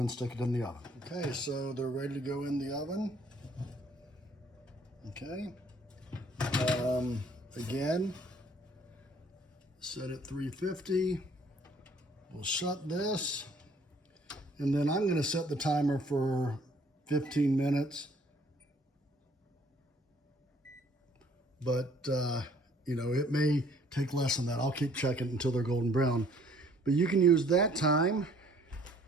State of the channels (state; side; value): normal; both; correlation 0.60